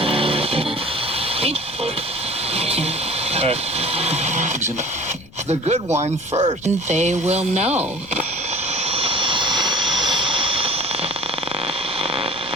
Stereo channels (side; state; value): left; noise; rumble, 23 dB below the sound